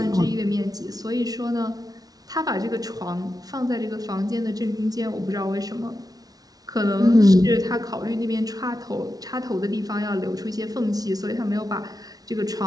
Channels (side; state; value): left; late; 0.18 ms